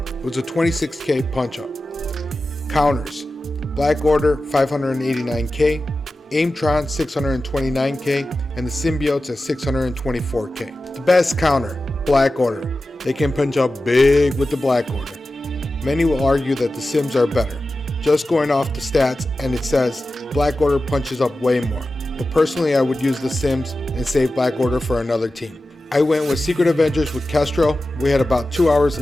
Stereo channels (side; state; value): both; normal; correlation 0.94